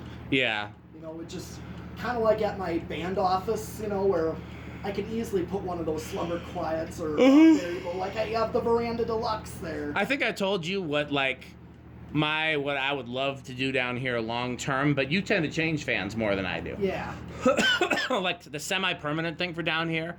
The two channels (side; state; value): both; identical; correlation 1.00